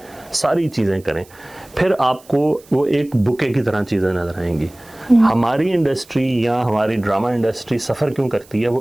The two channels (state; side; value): noise; right; hiss, 26 dB below the sound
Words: सारी चीज़ें करें, फिर आपको वो एक बुके की तरह चीज़ें नजर आएंगी। हमारी इंडस्ट्री या हमारी ड्रामा इंडस्ट्री सफ़र क्यों करती है?